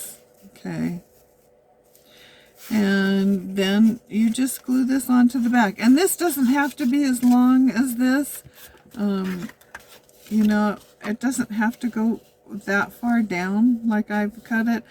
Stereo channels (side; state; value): both; identical; correlation 1.00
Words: Okay. And then you just glue this onto the back. And this doesn't have to be as long as this. You know, it doesn't have to go that far down like I've cut it.